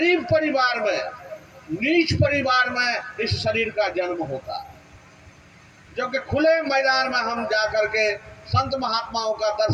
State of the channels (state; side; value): identical; both; correlation 1.00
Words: परिवार में, नीच परिवार में इस शरीर का जन्म होता, जो कि खुले मैदान में हम जाकर के संत महात्माओं का